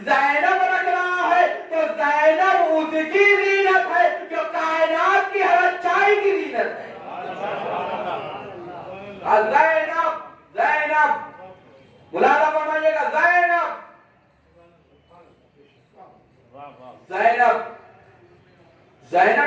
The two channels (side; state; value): both; identical; correlation 1.00